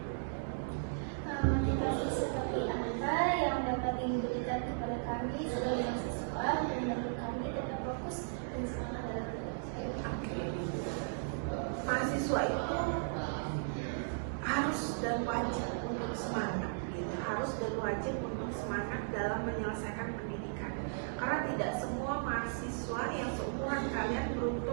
Motivasi seperti apa yang dapat diberikan kepada kami sebagai mahasiswa dan membantu kami tetap fokus dan semangat dalam belajar? Mahasiswa itu harus dan wajib untuk semangat gitu. Harus dan wajib untuk semangat dalam menyelesaikan pendidikan, karena tidak semua mahasiswa yang seumuran kalian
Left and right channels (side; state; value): left; silent; digital silence